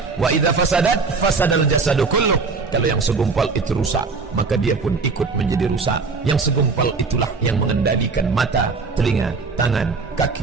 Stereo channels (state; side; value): quieter; left; 4.5 dB